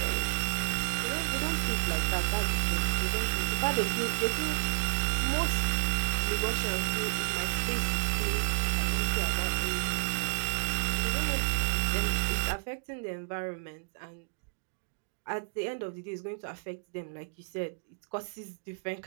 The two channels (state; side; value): silent; left; digital silence